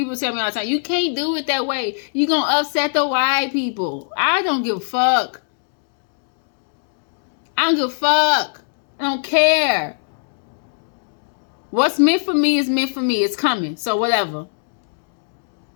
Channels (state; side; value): silent; right; digital silence